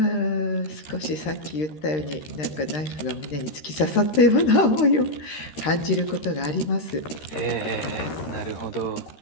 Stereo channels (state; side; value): late; right; 13 ms